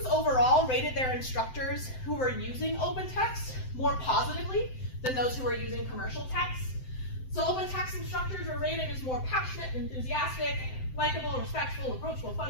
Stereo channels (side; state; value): right; late; 7.8 ms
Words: overall rated their instructors who were using open text more positively than those who were using commercial text. So open text instructors are rated as more passionate, enthusiastic, likable, respectful, approachable,